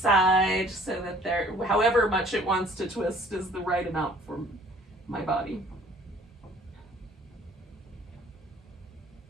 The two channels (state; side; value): normal; both; correlation 0.55